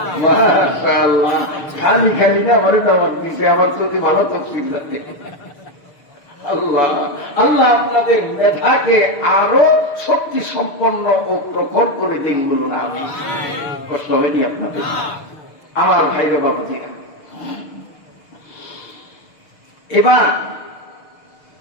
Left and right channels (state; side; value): late; right; 6.5 ms